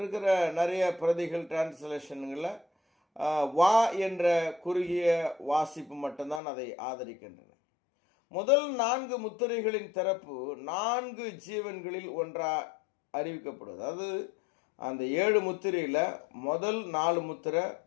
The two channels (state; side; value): drops out; right; at 6.4 s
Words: நிறைய பிரதிகள் டிரான்ஸ்லேஷன்களில் வா என்ற குறுகிய வாசிப்பு மட்டும்தான் அதை ஆதரிக்கின்றன. முதல் 4 முத்திரைகளின் திறப்பு 4 ஜீவன்களில் ஒன்றா அறிவிக்கப்படுது. அதாவது அந்த 7 முத்திரையில் முதல் 4 முத்திரை,